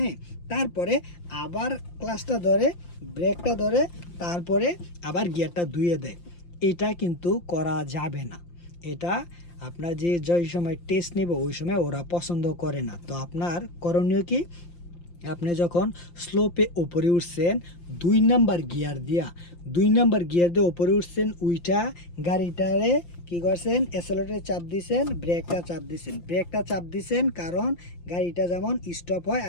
তারপরে আবার ক্লাসটা ধরে, ব্রেকটা ধরে, তারপরে আবার গিয়ারটা ধুয়ে দেয়। এটা কিন্তু করা যাবে না। এটা আপনার যে সময় টেস্ট নেব ওই সময় ওরা পছন্দ করে না। তো আপনার করণীয় কি, আপনি যখন স্লোপে ওপরে উঠছেন 2 নাম্বার গিয়ার দিয়ে ওপরে উঠছেন, উইটা গাড়িটারে কি করছেন, অ্যাক্সেলারেটরে ব্রেকটা চাপ দিছেন কারণ গাড়িটা যেমন স্টপ হয়,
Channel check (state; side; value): late; right; 5.8 ms